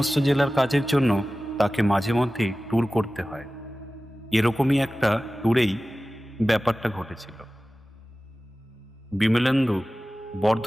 জেলার কাজের জন্য তাকে মাঝে মধ্যেই ট্যুর করতে হয়। এরকমই একটা ট্যুরেই ব্যাপারটা ঘটেছিল। বিমলেন্দু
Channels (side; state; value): both; normal; correlation 0.96